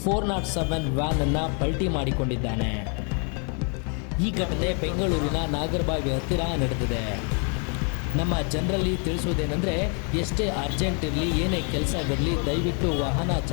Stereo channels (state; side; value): quieter; right; 38.6 dB